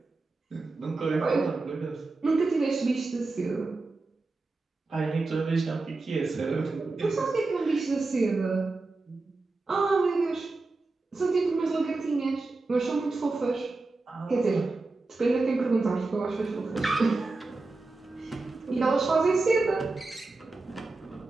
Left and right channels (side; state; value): left; quieter; 3.5 dB